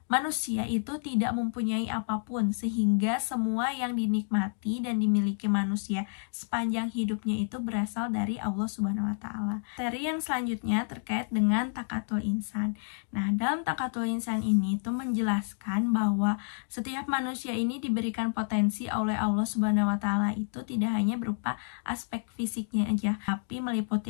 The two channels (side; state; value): right; silent; digital silence